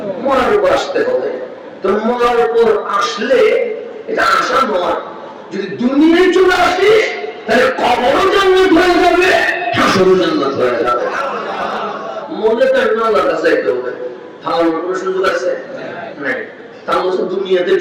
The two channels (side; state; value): both; identical; correlation 1.00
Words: মরার উপর আসতে হবে। তো মরার উপর আসলে এটা আশা নয়, যদি দুনিয়ায় চলে আসিস তাহলে কবরও জান্নাত হয়ে যাবে, হাসরও জান্নাত হয়ে যাবে। মনে তো আল্লাহর কাছে যেতে হবে, তাহলে কোনো সুযোগ আছে নাই। তাহলে দুনিয়াতে